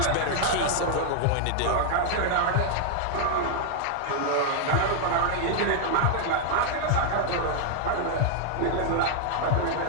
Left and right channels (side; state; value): both; different; correlation 0.00